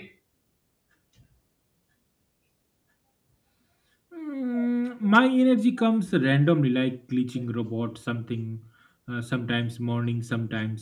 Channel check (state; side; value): identical; both; correlation 1.00